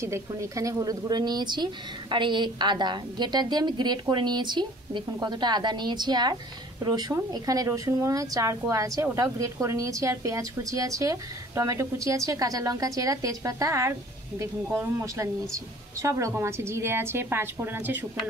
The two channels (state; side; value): normal; both; correlation 0.50